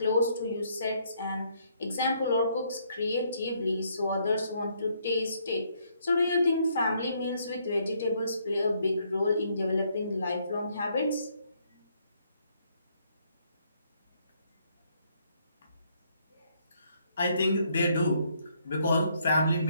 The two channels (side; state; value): both; inverted; correlation -0.70